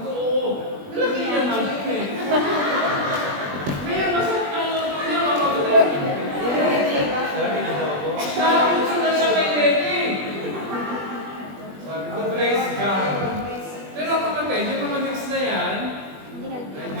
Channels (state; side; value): late; left; 20 ms